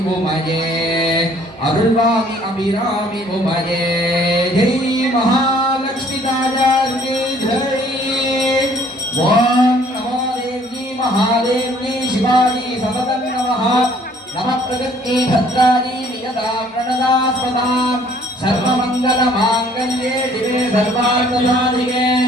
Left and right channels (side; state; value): both; normal; correlation 0.59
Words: உமையே அருள்வாமி அபிராமி உமையே ஜெய் மகாலட்சுமி தாயாருக்கு ஜெய் ஓம் நமோ தேவி மகாதேவி சிவாஜி சததம் நமः நம பிரகத்தி பத்ராஜி நியதா பிரணதாஸ்பதாம் सर्वमंगल मांगल्ये शिवे सर्वार्थसाधिके